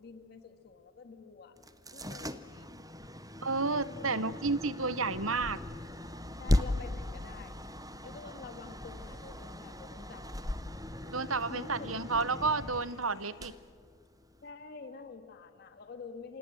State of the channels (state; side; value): normal; both; correlation 0.25